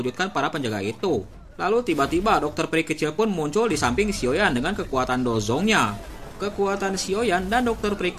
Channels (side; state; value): both; identical; correlation 1.00